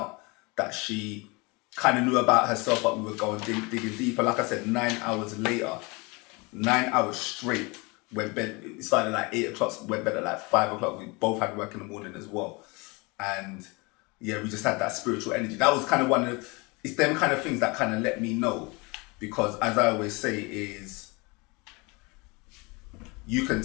that she kind of knew about herself, but we were going digging deeper. Like I said, 9 hours later, 9 hours straight, went bed. It started at like 8 o'clock, went bed at like 5 o'clock. We both had work in the morning as well. And yeah, we just had that spiritual energy. That was kind of it's them kind of things that kind of let me know. Because as I always say is, you can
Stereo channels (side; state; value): right; quieter; 27.2 dB